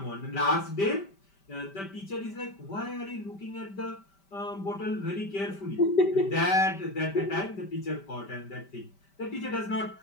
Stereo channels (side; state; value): right; late; 5.1 ms